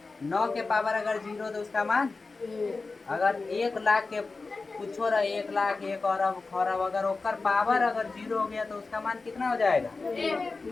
9 के पावर अगर जीरो तो उसका मान, अगर 1 लाख के पूछो रहा, 1 लाख, 1 अरब, खरब, अगर ओकर पावर अगर जीरो हो गया तो उसका मान कितना हो जाएगा?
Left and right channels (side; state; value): right; quieter; 3.9 dB